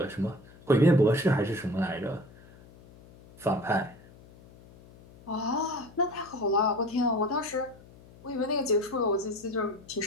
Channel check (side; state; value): left; noise; hum, 23 dB below the sound